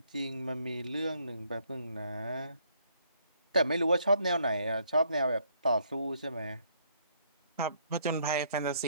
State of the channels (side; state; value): both; inverted; correlation -0.69